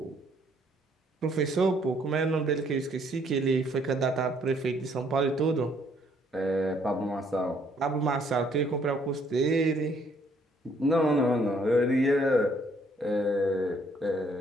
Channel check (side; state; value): both; normal; correlation 0.66